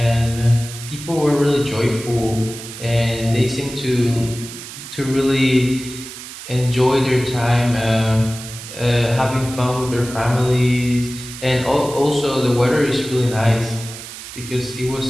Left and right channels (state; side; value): noise; right; hiss, 12 dB below the sound